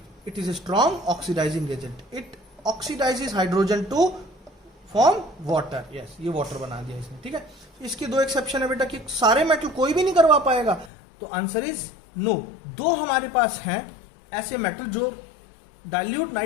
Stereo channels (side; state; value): right; drops out; at 10.9 s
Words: it is a strong oxidising agent, it oxidises hydrogen to form water. Yes, ये वाटर बना दिया इसने, ठीक है। इसके दो एक्सेप्शन है बेटा कि सारे मेटल कोई भी नहीं करवा पाएगा, तो आंसर इज नो। दो हमारे पास हैं ऐसे मेटल जो डाइल्यूट